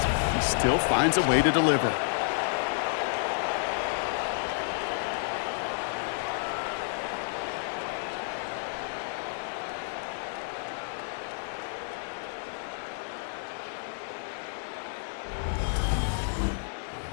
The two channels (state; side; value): silent; right; digital silence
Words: he still finds a way to deliver.